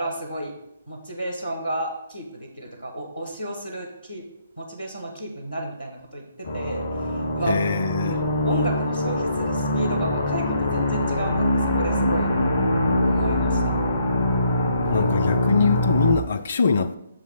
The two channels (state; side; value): inverted; both; correlation -0.71